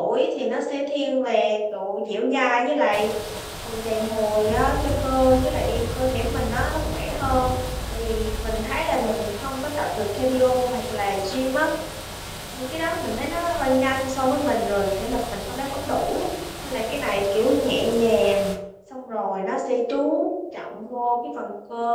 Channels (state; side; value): identical; both; correlation 1.00